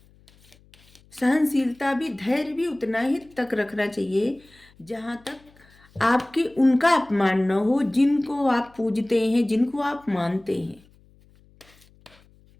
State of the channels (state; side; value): noise; left; hum, 29 dB below the sound